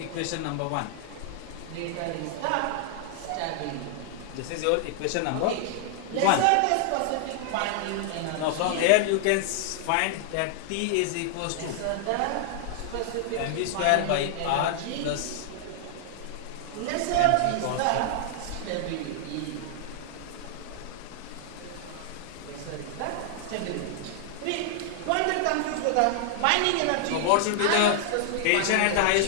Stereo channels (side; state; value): both; different; correlation -0.01